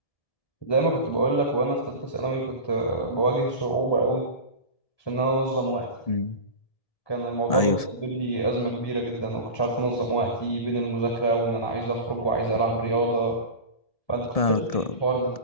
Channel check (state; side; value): late; right; 1.7 ms